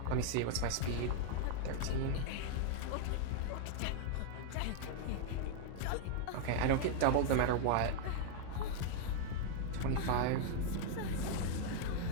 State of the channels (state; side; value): different; both; correlation 0.00